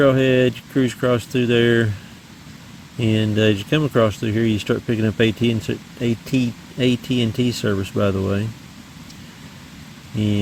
you cruise across through there, and as you come across through here, you start picking up AT&T service, by the way.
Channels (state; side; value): identical; both; correlation 1.00